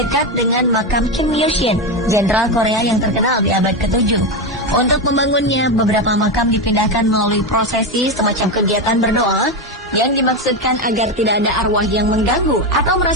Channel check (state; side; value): normal; both; correlation 0.13